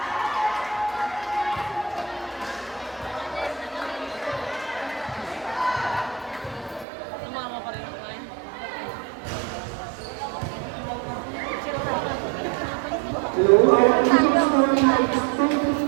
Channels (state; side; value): drops out; left; at 6.9 s